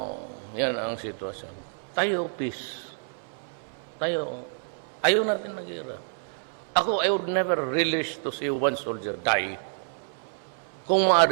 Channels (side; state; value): left; silent; 59 dB below the other